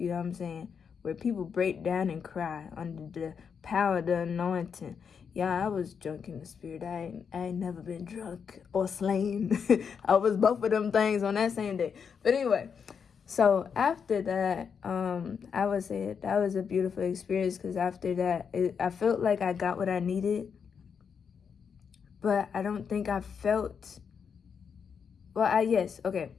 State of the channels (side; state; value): right; quieter; 6.6 dB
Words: know what I'm saying? Where people break down and cry under the power of the anointing. Yeah, I was drunk in the spirit. I ain't never been drunk or slain. I was both of them things on that same day. But anyway, so after that, I would say that was a beautiful experience, because after that, I felt like I got what I needed. But I don't think I felt, yes, okay.